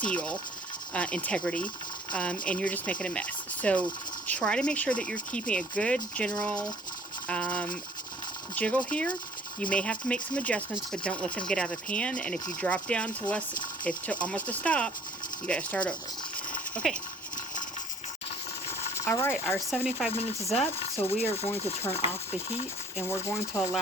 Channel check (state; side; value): normal; both; correlation 0.55